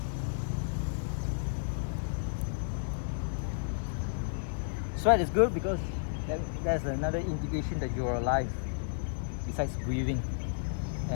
Sweat is good because there's another indication that you're alive, besides breathing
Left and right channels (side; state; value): right; silent; 56 dB below the other